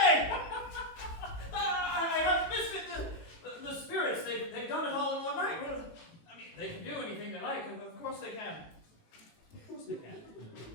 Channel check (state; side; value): late; right; 18 ms